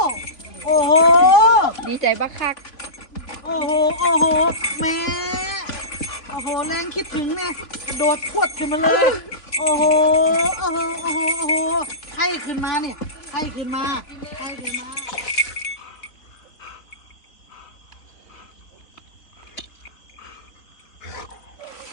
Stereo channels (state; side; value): late; right; 3.5 ms